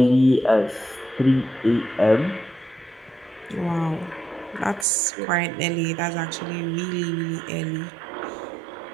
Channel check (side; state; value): left; drops out; at 4.9 s